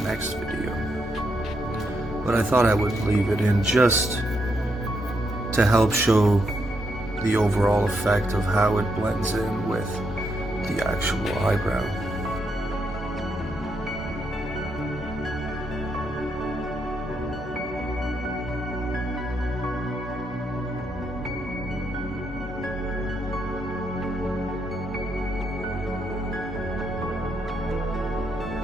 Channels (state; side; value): normal; both; correlation 0.78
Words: video. But I thought I would leave it in just to help show the overall effect of how it blends in with the actual eyebrow.